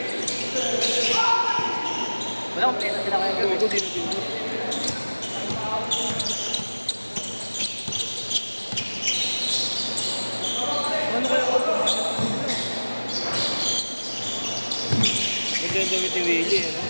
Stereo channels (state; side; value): inverted; both; correlation -1.00